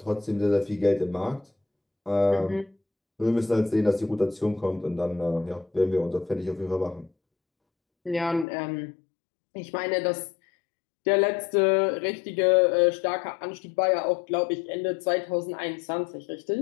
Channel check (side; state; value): right; drops out; at 8.5 s